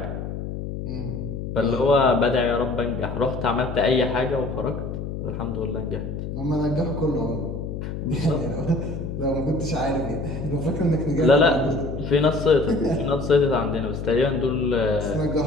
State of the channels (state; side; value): noise; left; hum, 6 dB below the sound